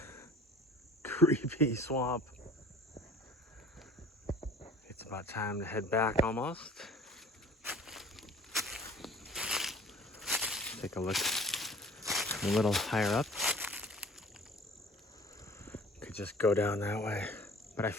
Creepy swamp. It's about time to head back almost. Take a look a little higher up. Could just go down that way. But I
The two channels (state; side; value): normal; both; correlation 0.48